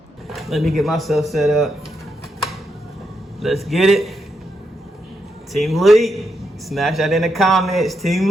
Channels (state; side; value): normal; both; correlation 0.82